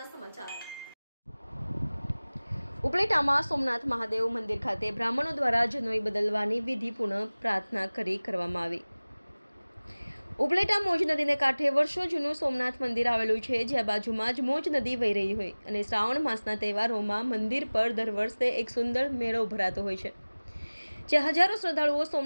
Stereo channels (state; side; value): inverted; both; correlation -1.00